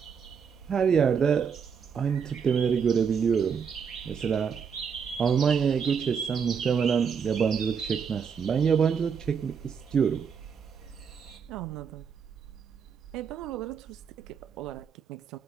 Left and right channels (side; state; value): left; quieter; 6.7 dB